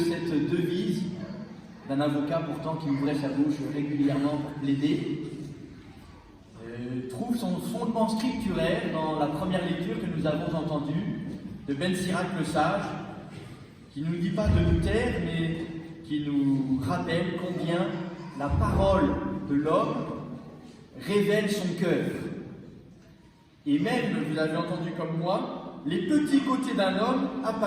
devise d'un avocat pourtant qui ouvrait sa bouche régulièrement pour plaider trouve son fondement scripturaire dans la première lecture que nous avons entendue de Ben Sirac le Sage, qui ne nous dit pas de nous taire, mais qui nous rappelle combien la parole de l'homme révèle son cœur. Et même, vous avez entendu comme moi, les petits côtés d'un homme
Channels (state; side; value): identical; both; correlation 1.00